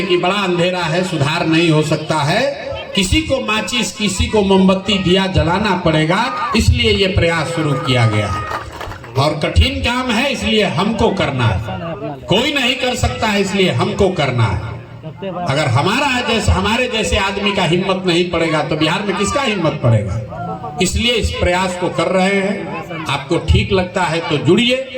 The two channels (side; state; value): both; identical; correlation 1.00